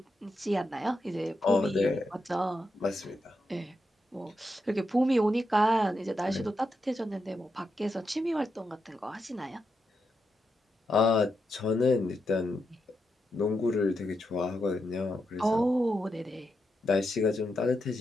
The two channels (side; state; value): both; normal; correlation 0.85